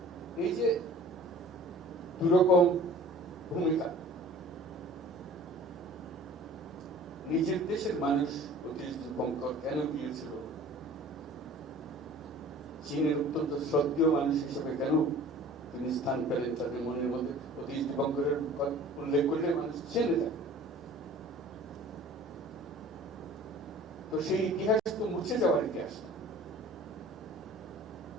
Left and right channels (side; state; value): both; normal; correlation 0.46